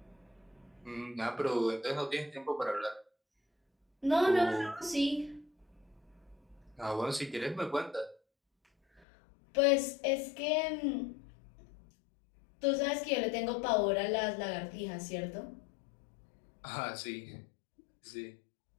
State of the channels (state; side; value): drops out; right; at 9.0 s